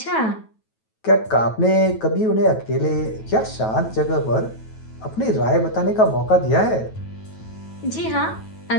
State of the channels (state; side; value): late; right; 9.2 ms